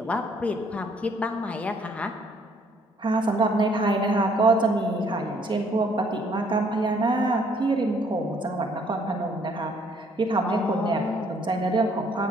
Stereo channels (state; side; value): normal; both; correlation 0.64